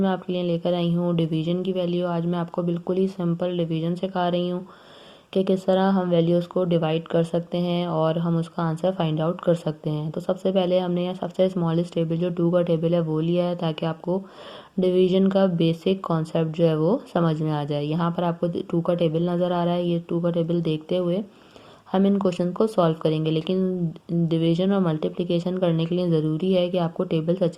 आपके लिए लेकर आई हूँ डिवीजन की वैल्यू। आज मैं आपको बिल्कुल ही सिंपल डिवीजन सिखा रही हूँ कि किस तरह हम वैल्यूज़ को डिवाइड कर सकते हैं और हम उसका आंसर फाइंड आउट कर सकते हैं। तो सबसे पहले हमने यहाँ सबसे स्मॉलेस्ट टेबल जो 2 का टेबल है वो लिया है, ताकि आपको डिवीजन का बेसिक कॉन्सेप्ट जो है वो समझ में आ जाए। यहाँ पर आपको 2 का टेबल नज़र आ रहा है। ये 2 का टेबल देखते हुए हम इन क्वेश्चन को सॉल्व करेंगे, लेकिन डिवीजन और मल्टीप्लिकेशन करने के लिए ज़रूरी है कि आपको टेबल्स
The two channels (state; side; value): identical; both; correlation 1.00